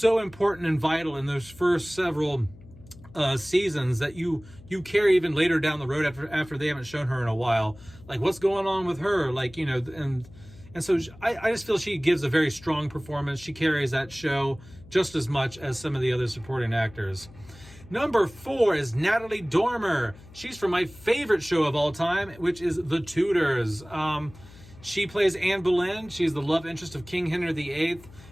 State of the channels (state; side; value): noise; left; hum, 21 dB below the sound